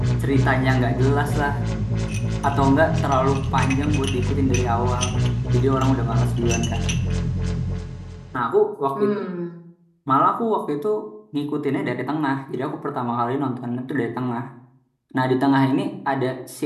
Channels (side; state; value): both; identical; correlation 1.00